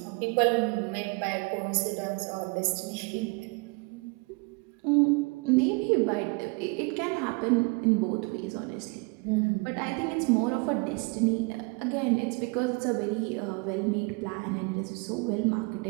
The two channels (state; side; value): quieter; left; 30.0 dB